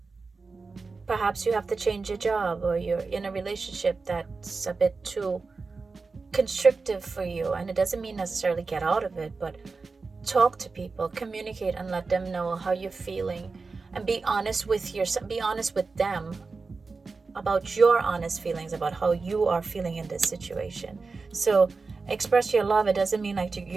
perhaps you have to change your job, or you're in a relationship that's a bit too constrictive for you. And it doesn't mean necessarily get out of it, but talk to people, communicate, and let them know how you're feeling, and be honest with yourself, be honest with them about your honest feelings about how you are feeling in this situation. So express your love. It doesn't mean like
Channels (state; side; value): quieter; left; 4.2 dB